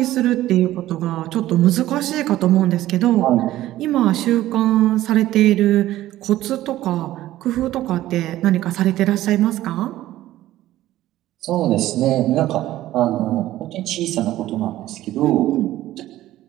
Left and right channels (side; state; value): left; quieter; 14.7 dB